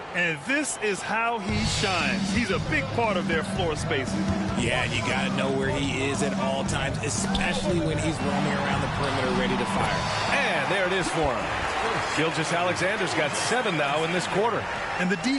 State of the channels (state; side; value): identical; both; correlation 1.00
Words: And this is how he shines. He's a big part of their floor spacing. Yeah, and you got to know where he is at all times, especially when he's roaming around the perimeter ready to fire. And there it is for him. Gilgeous-Alexander's got 7 now in this quarter. And the D